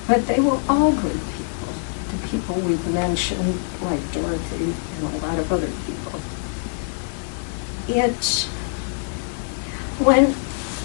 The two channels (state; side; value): silent; right; digital silence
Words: But they were all good people, the people we've mentioned, like Dorothy and a lot of other people.